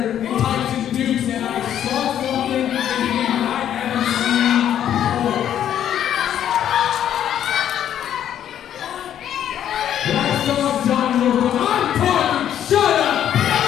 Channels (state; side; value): quieter; right; 10.3 dB